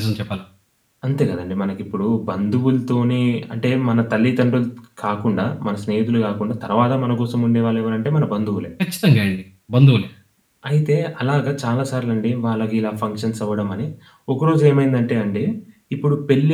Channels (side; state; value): both; identical; correlation 1.00